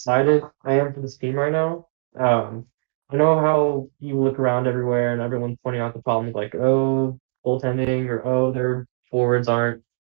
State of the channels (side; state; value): left; silent; 64 dB below the other